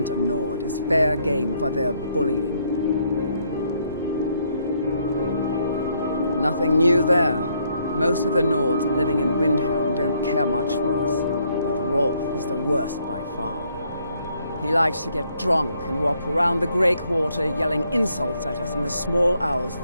a Nord is fair game for their bullying. Nothing new there. Most of the Nords living in Windhelm don't care much for us, but Rolf is the worst by far. He likes to get drunk and walk around the Grey Quarter yelling insults at us in the small hours of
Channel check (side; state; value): both; inverted; correlation -0.71